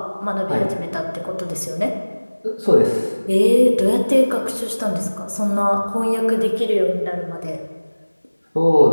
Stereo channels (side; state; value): both; inverted; correlation -1.00